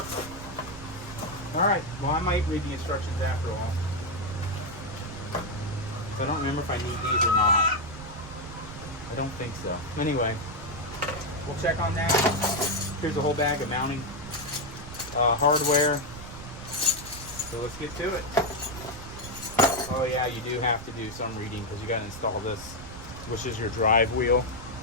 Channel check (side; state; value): right; noise; rumble, 13 dB below the sound